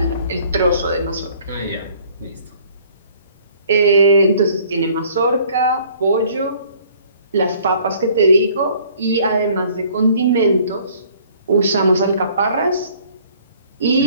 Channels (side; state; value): both; inverted; correlation -0.56